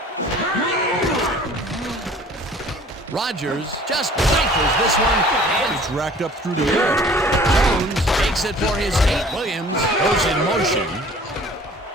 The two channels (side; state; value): both; normal; correlation 0.50